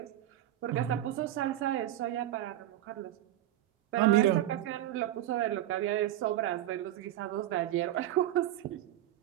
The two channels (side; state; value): left; quieter; 13.4 dB